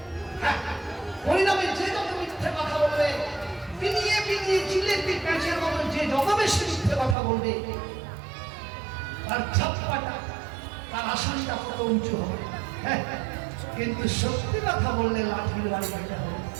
হ্যাঁ, পরিণামে যে যত মিথ্যে কথা বলবে, পিনিয়ে পিনিয়ে জিলেপি প্যাঁচের মতো যে যত বেশি মিথ্যে কথা বলবে, তার ছাপ্পাটা, তার আসনটা কত উঁচু হবে। হ্যাঁ, কিন্তু সত্যি কথা বললে লাঠির বাড়ি খেতে হবে।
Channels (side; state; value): left; drops out; at 7.2 s